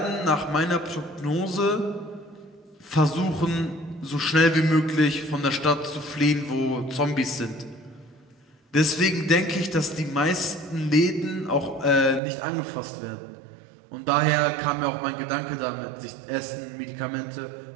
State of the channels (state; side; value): drops out; left; at 12.2 s